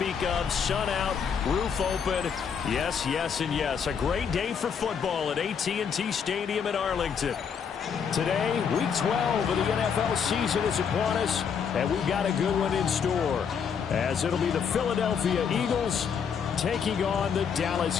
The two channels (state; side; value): quieter; right; 6.9 dB